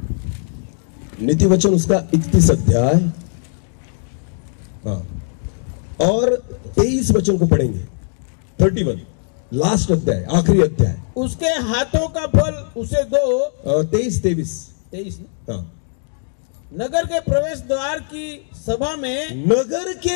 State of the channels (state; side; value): silent; right; 66 dB below the other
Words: नीति वचन उसका 31 अध्याय, हाँ, और 23 वचन को पढ़ेंगे। 31 लास्ट अध्याय, आखिरी अध्याय। उसके हाथों का फल उसे दो। 23 हाँ। नगर के प्रवेश द्वार की सभा में, नगर